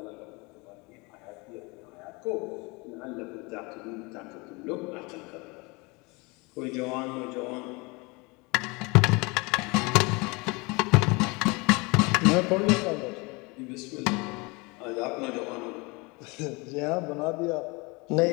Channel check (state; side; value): quieter; right; 26.9 dB